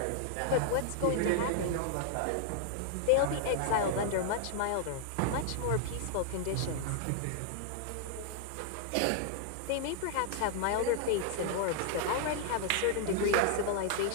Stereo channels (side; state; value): both; different; correlation -0.01